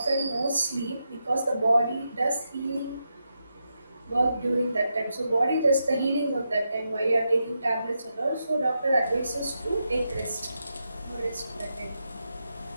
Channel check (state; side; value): inverted; both; correlation -0.86